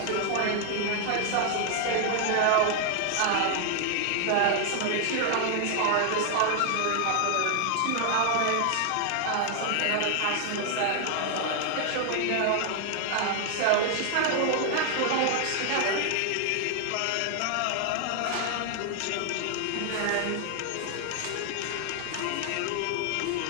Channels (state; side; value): different; both; correlation 0.00